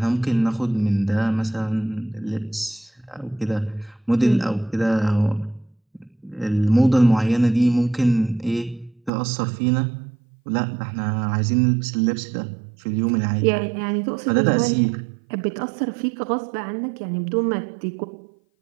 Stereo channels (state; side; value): drops out; left; at 9.1 s